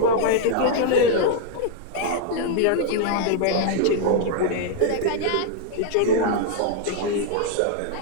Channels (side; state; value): both; different; correlation -0.01